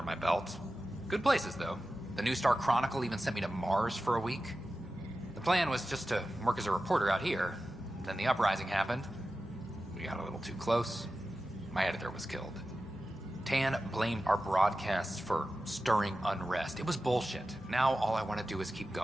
my belt. Good places, though. The New Star Chronicle even sent me to Mars for a week. The plan was just to work as a reporter out here. Then the uprising happened. We got a little too close. My editor was killed. Tan blamed our broadcasts for stirring unrest. It was bullshit. Now all I want to do is keep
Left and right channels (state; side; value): normal; both; correlation 0.93